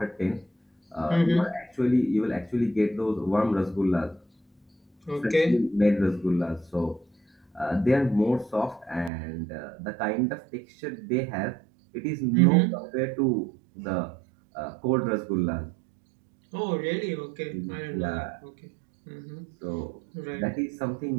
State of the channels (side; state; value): left; drops out; at 9.1 s